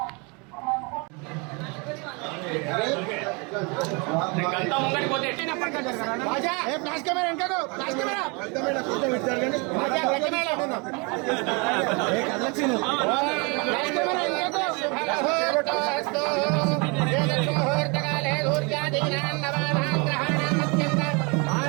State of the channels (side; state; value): left; quieter; 30.9 dB